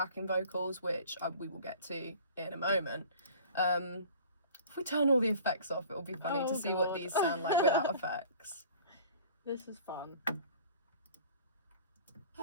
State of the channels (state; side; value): inverted; both; correlation -0.46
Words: vocals, which we will get to in a moment. If we turn all the effects off, it'll be funny to see what these sound like without effects. This is fun.